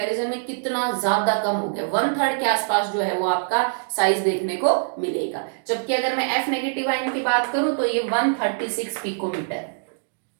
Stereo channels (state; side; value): silent; left; digital silence